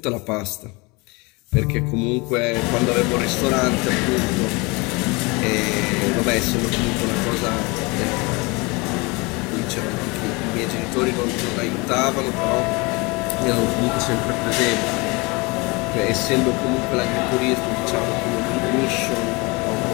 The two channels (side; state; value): right; quieter; 26.6 dB